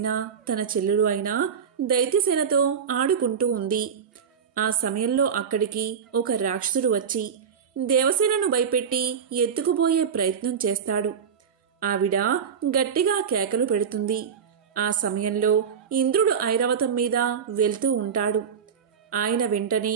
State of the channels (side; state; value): left; quieter; 7.1 dB